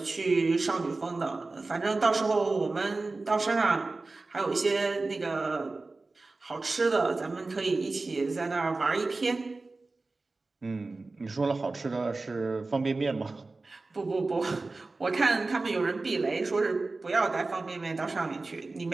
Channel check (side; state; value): left; quieter; 3.5 dB